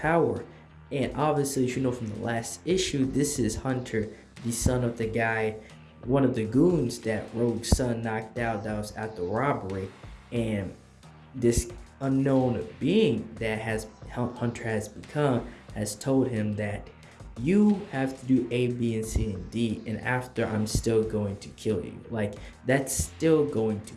And obviously, as you know from the last issue, this is Hunter, the son of the guy, one of the goons that Rogue Sun knocked out that was at the robbery. And this unknown being that Hunter has become has told him that you have to do A, B, and C, and D, and after, I'm still going to kill you. Like, that's still going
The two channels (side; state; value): both; identical; correlation 1.00